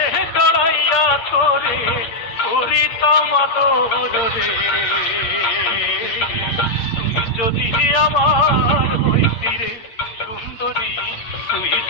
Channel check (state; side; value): late; right; 8.8 ms